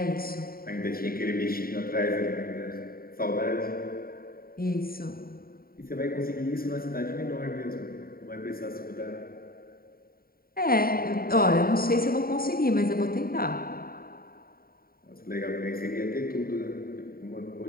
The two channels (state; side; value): late; right; 0.43 ms